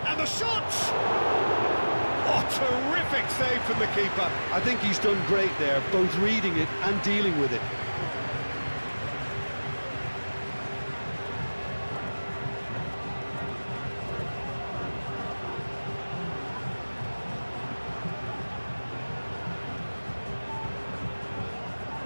And the shot! Oh, terrific save from the keeper. I think he's done great there, both reading it and dealing with it.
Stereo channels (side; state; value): both; inverted; correlation -1.00